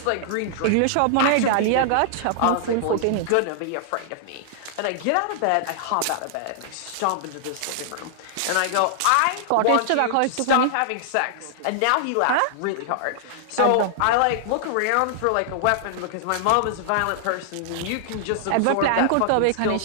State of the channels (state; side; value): different; both; correlation -0.01